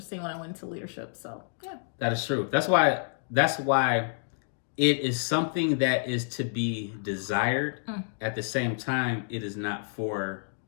when I went into leadership. So, yeah. That is true. That's why it is something that is to be desired. At the same time, it is not for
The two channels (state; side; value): silent; right; digital silence